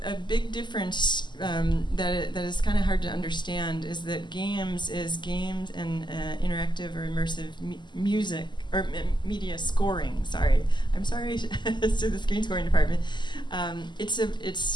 a big difference that is kind of hard to understand is that games and interactive or immersive music or media scoring. I'm sorry to the screen scoring department.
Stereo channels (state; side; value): late; right; 0.22 ms